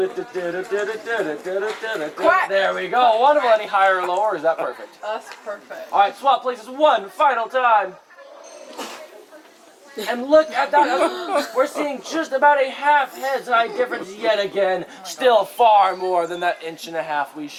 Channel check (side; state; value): both; identical; correlation 1.00